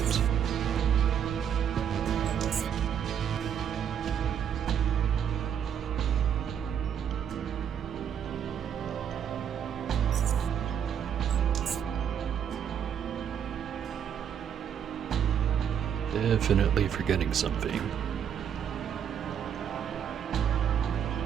Definitely forgetting something.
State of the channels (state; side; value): quieter; left; 8.6 dB